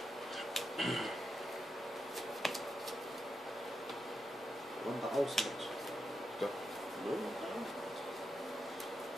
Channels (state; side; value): normal; both; correlation 0.85